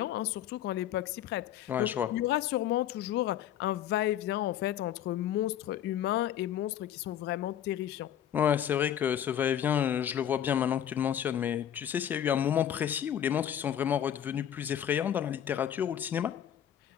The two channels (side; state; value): right; quieter; 10.2 dB